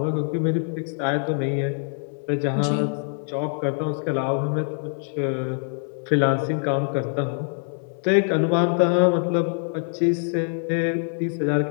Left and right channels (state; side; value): silent; right; 62 dB below the other